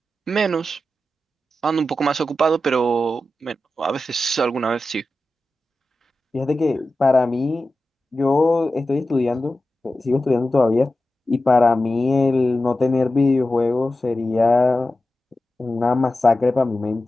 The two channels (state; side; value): normal; both; correlation 0.92